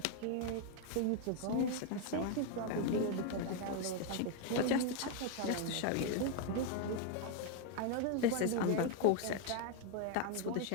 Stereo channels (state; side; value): different; both; correlation 0.00